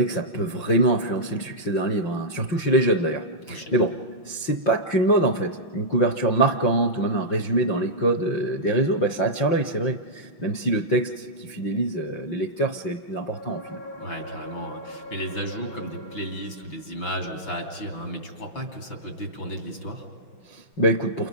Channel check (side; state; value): right; late; 5.7 ms